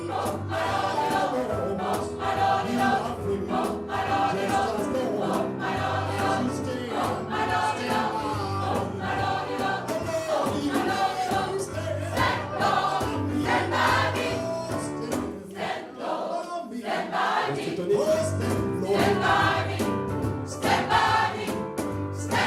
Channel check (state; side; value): identical; both; correlation 1.00